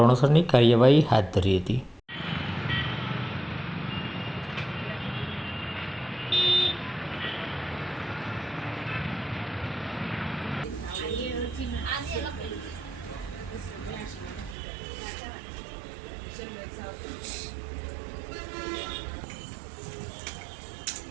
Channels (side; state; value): left; drops out; at 14.6 s